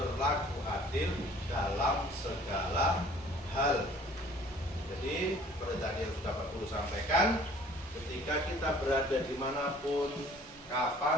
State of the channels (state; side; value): normal; both; correlation 0.53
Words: adil dalam segala hal. Jadi seperti tadi yang sudah Pak Guru sampaikan, ketika kita berada dimanapun,